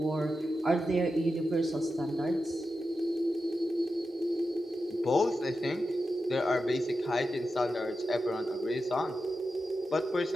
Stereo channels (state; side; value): normal; both; correlation 0.90